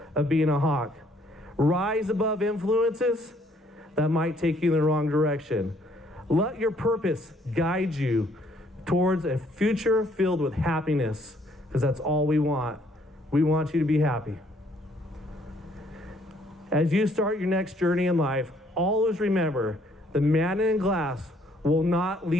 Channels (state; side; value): normal; both; correlation 0.65